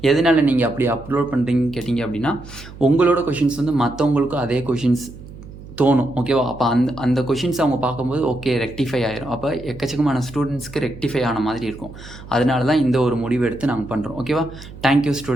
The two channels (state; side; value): noise; right; hum, 16 dB below the sound